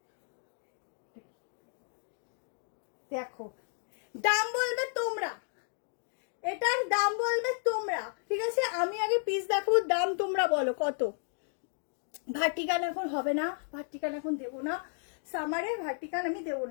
দেখো দাম বলবে তোমরা, এটার দাম বলবে তোমরা, ঠিক আছে আমি আগে পিস দেখাবো, দাম তোমরা বলো কত। ভার্টিকান এখন হবে না, ভার্টিকান এখন দেবো না, সামারে ভার্টিকান আমি দেবো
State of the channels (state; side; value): silent; right; digital silence